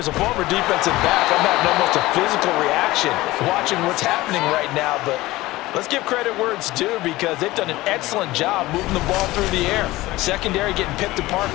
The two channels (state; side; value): quieter; right; 18.5 dB